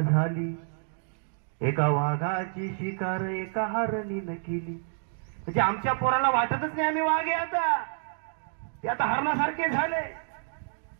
झाली, एका वाघाची शिकार एका हरणीनं केली. म्हणजे आमच्या पोराला वाटतच नाही आम्ही वाघ आहे, आता ते आता हरणासारखे झाले.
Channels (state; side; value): silent; left; digital silence